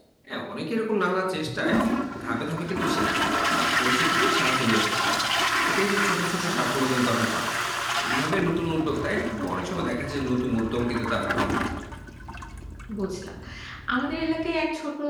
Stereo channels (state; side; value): identical; both; correlation 1.00